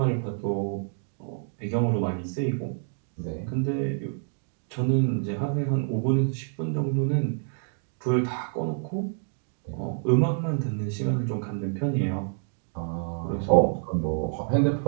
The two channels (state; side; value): silent; left; 60 dB below the other